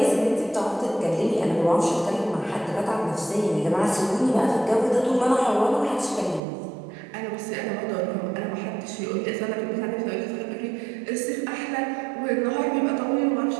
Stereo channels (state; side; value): drops out; left; at 6.4 s